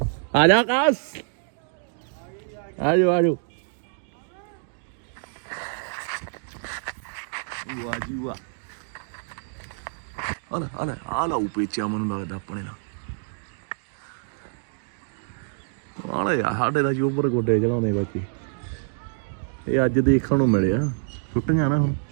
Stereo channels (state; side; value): silent; left; digital silence